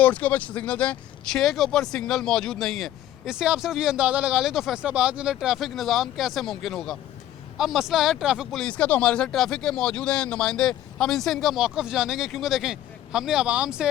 के ऊपर सिग्नल हैं, 6 के ऊपर सिग्नल मौजूद नहीं है। इससे आप सिर्फ ये अंदाज़ा लगा लें तो फैसलाबाद के अंदर ट्रैफिक निज़ाम कैसे मुमकिन होगा। अब मसला है ट्रैफिक पुलिस का, तो हमारे साथ ट्रैफिक के मौजूद हैं नुमाइंदे। हम इनसे इनका मौक़िफ़ जानेंगे, क्योंकि देखें हमने आवाम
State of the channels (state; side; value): quieter; right; 12.8 dB